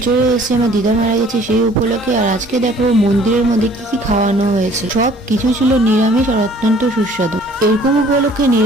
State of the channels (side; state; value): both; normal; correlation 0.54